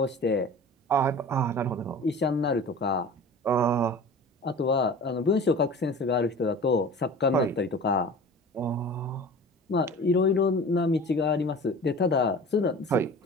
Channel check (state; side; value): normal; both; correlation 0.39